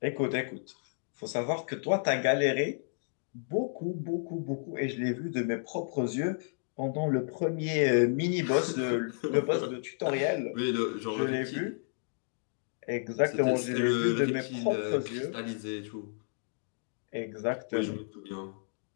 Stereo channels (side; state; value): right; silent; digital silence